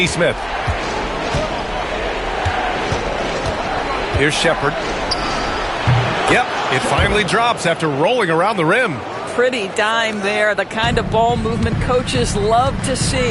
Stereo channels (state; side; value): identical; both; correlation 1.00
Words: Here's Shepard. Yep, it finally drops after rolling around the rim. Pretty dime there, the kind of ball movement coaches love to